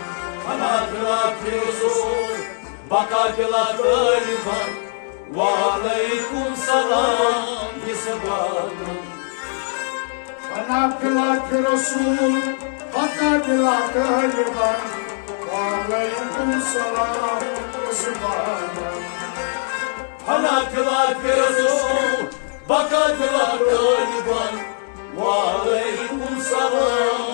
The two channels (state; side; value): silent; right; 63 dB below the other